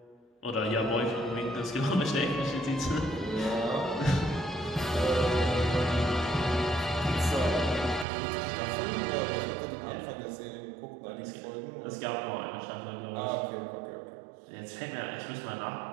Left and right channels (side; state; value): left; drops out; at 8.1 s